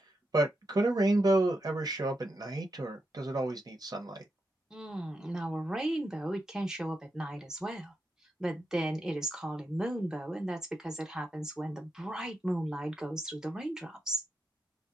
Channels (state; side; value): normal; both; correlation 0.85